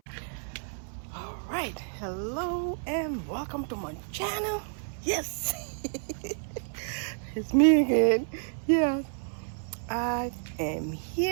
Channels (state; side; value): silent; left; 58 dB below the other